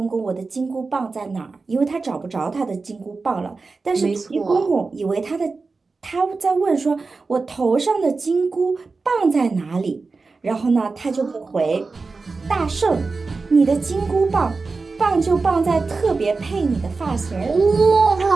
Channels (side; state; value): left; quieter; 4.1 dB